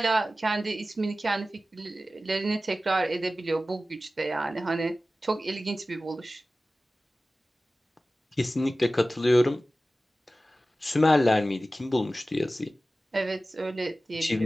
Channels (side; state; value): both; normal; correlation 0.96